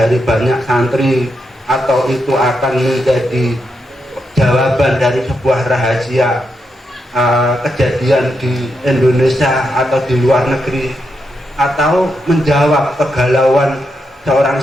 banyak santri, atau itu akan menjadi jawaban dari sebuah rahasia kejadian di Indonesia atau di luar negeri, atau menjawab kegalauan seorang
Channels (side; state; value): both; normal; correlation 0.83